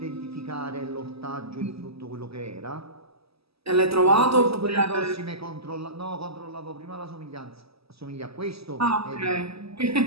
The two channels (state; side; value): late; left; 0.77 ms